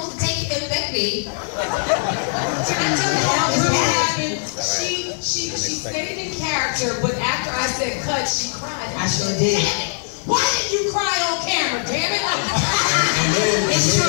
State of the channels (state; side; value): silent; right; 65 dB below the other